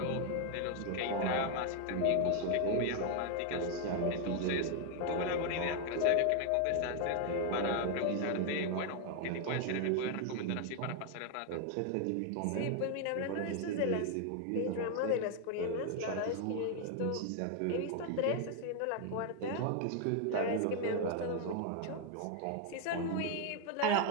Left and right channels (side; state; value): both; different; correlation 0.01